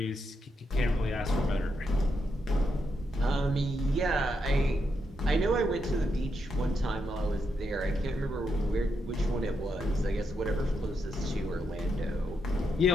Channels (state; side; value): normal; both; correlation 0.82